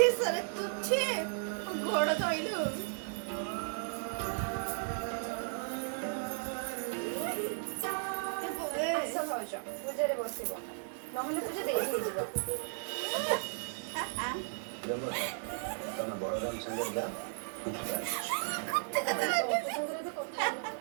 ତୁଛେ ଗୋଡ଼ ଧଇଲୁ। ଆସ ଭାଉଜ ପୂଜାରେ ବସିବ, ନହେଲେ ପୂଜା ଦେଇ ହେଇଯିବ। ତମେ ବଳରାମ ସାଙ୍ଗରେ ଯା।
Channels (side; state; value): left; silent; digital silence